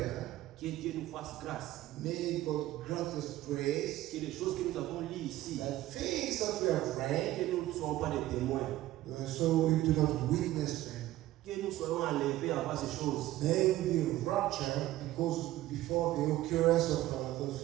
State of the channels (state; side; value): quieter; left; 15.6 dB